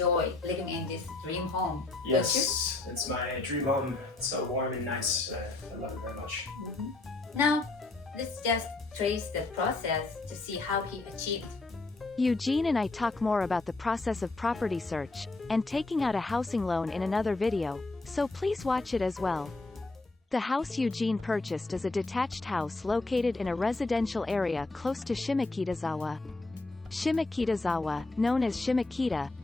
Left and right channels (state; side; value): quieter; right; 3.2 dB